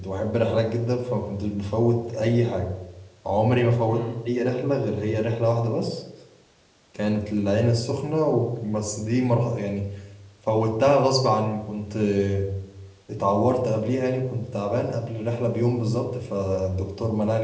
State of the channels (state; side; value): identical; both; correlation 1.00